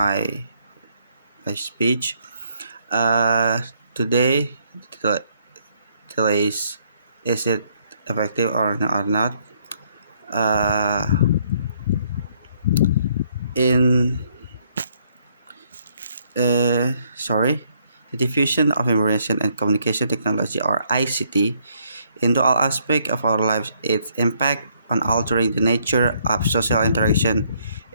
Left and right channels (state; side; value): inverted; both; correlation -0.69